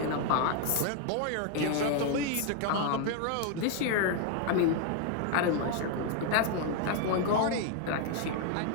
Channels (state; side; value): different; both; correlation 0.00